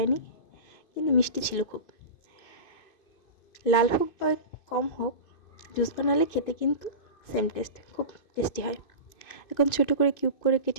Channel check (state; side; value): late; right; 2.6 ms